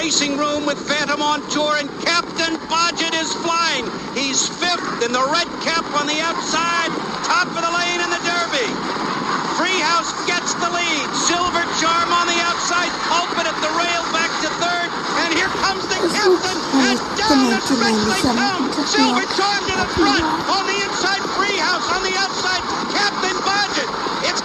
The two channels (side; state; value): both; identical; correlation 1.00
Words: room with Phantom on Tour, and Captain Bodgett is flying. He's fifth in the red cap on the outside, top of the lane in the Derby. Treehouse gets the lead. Silver Charm on the outside. Pulpit at the rail back to third. And here comes the captain. And down the stretch they come. Silver Charm to the front. On the inside, Treehouse. On the outside, Captain Bodgett. It's